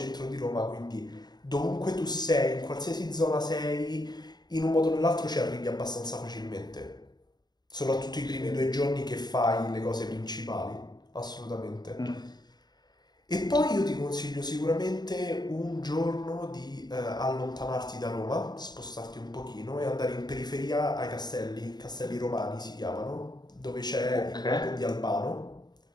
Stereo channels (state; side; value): late; right; 0.20 ms